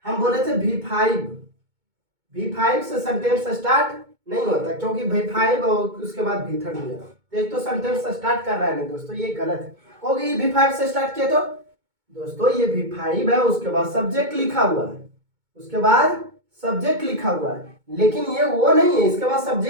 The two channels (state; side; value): late; left; 2.2 ms